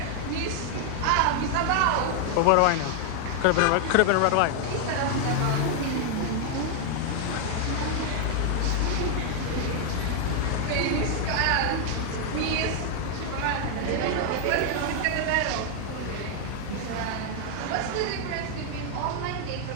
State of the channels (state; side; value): different; both; correlation 0.00